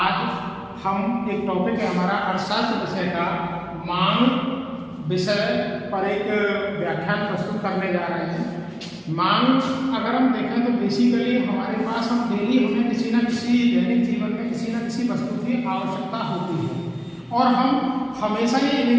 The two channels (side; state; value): both; identical; correlation 1.00